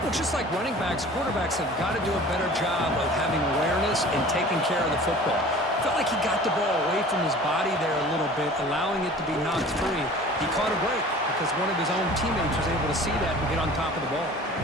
Well, just like running backs, quarterbacks have got to do a better job of having awareness and taking care of the football. Felt like he got the ball away from his body there a little bit, allowing it to be knocked free. He caught a break because one of his own teammates was able to see that and get on top of the ball.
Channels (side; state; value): both; normal; correlation 0.44